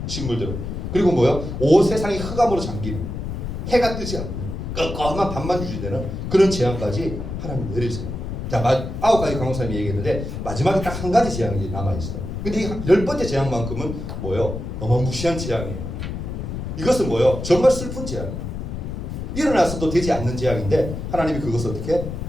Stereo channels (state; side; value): noise; left; rumble, 6 dB below the sound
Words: 식물들을. 그리고 뭐요? 온 세상이 흑암으로 잠기는, 해가 뜨지 않는 껌껌한 밤만 유지되는 그런 재앙까지 하나님 내리세요. 자, 9가지 강호사님이 얘기했는데 마지막에 딱 한 가지 재앙이 남아있어. 근데 이 10번째 재앙만큼은 뭐요? 어마무시한 재앙이에요. 이것은 뭐요? 정말 슬픈 재앙이에요. 일어나서도 되지 않는 재앙인데 하나님이 그것을 어떻게